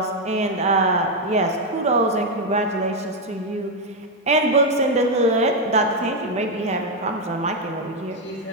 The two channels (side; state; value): both; normal; correlation 0.03